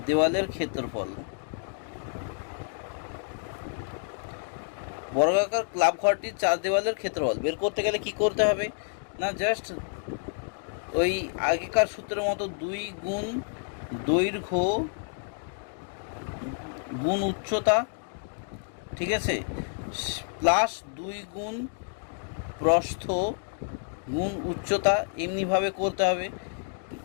দেওয়ালের ক্ষেত্রফল। বর্গাকার ক্লাব ঘরটির 4 দেওয়ালের ক্ষেত্রফল বের করতে গেলে কি করতে হবে না, জাস্ট ওই আগেকার সূত্রের মতো 2 গুণ দৈর্ঘ্য গুণ উচ্চতা, ঠিক আছে, প্লাস 2 গুণ প্রস্থ গুণ উচ্চতা, এমনিভাবে করতে হবে,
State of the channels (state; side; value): silent; right; digital silence